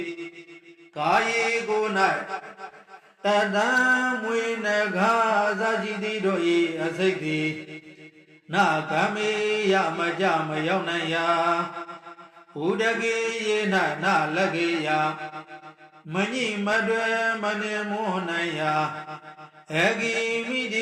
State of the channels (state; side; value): identical; both; correlation 1.00